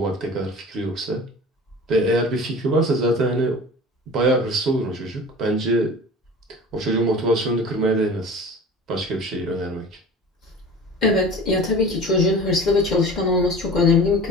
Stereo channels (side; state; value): both; normal; correlation 0.39